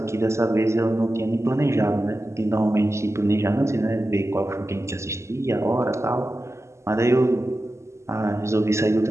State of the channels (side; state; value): left; late; 0.13 ms